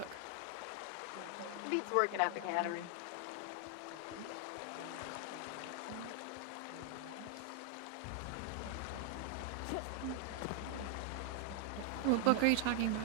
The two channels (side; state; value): both; different; correlation 0.00